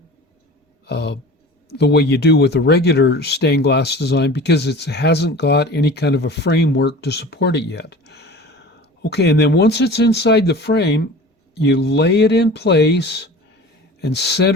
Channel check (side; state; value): both; normal; correlation 0.38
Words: the way you do with a regular stained glass design, because it hasn't got any kind of a framework to support it yet. Okay, and then once it's inside the frame, you lay it in place and